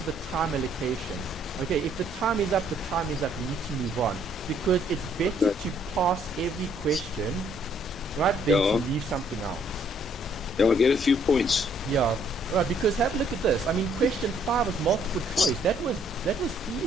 the time allocation. Okay, if the time is up, the time is up. You need to move on. Because it's better to pass every question, right, than to leave something out. Yeah, I'll get a few points. Yeah, Right, because have a look at this. I mean, question 5 was multiple choice. That was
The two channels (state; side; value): normal; both; correlation 0.65